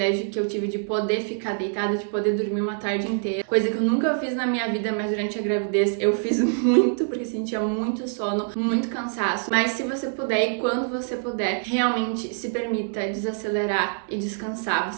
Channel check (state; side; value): silent; left; 62 dB below the other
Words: que eu tive de poder ficar deitada, de poder dormir uma tarde inteira, coisa que eu nunca fiz na minha vida, mas durante a gravidez eu fiz muito, porque sentia muito sono, muito cansaço. Mas se você puder e quando você puder, realmente se permita desacelerar e descansar.